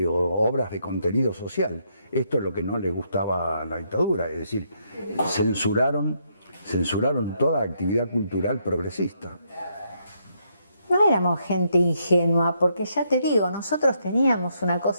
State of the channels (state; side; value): inverted; both; correlation -0.76